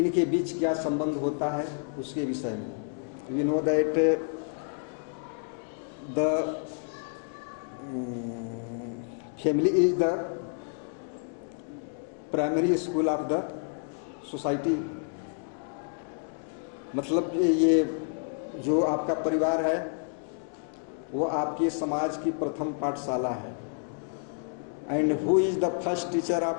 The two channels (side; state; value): right; silent; 58 dB below the other